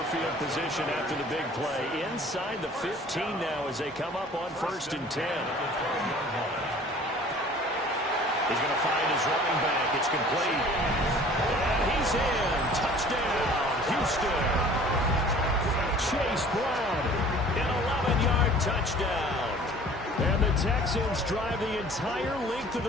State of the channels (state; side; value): normal; both; correlation 0.49